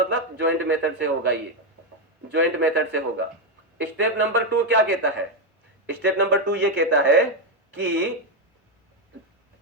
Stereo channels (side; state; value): both; normal; correlation 0.06